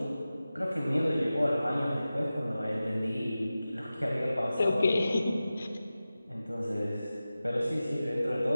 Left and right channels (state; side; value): inverted; both; correlation -0.95